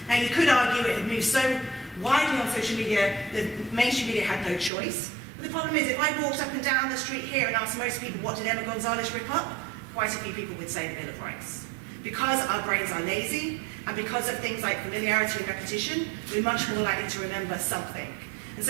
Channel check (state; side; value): drops out; left; at 4.7 s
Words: Now you could argue it had moved so widely on social media, the mainstream media had no choice. But the problem is, if I walked up and down the street here and asked most people, what did Emma Gonzalez rip up? Quite a few people would say the Bill of Rights. Because our brains are lazy, and because of things like familiarity and repetition, we're much more likely to remember something. And